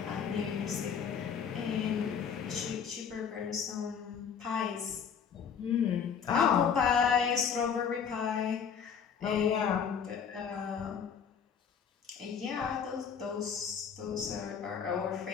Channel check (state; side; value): quieter; right; 7.1 dB